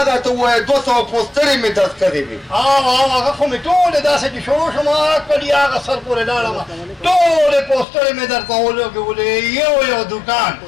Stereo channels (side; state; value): right; drops out; at 7.9 s